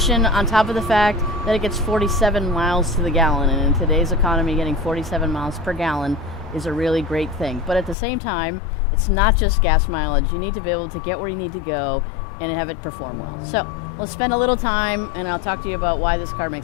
on top of the fact that it gets 47 miles to the gallon, and in today's economy getting 47 miles per gallon is a really great thing. But at the same time, it's not just gas mileage. You need to be able to get where you need to go and have it perform well. So let's spend a little time and I'll talk to you about why this car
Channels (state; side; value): drops out; right; at 8.0 s